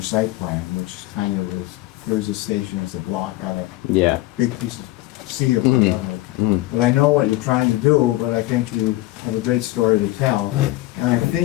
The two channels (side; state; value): right; quieter; 17.7 dB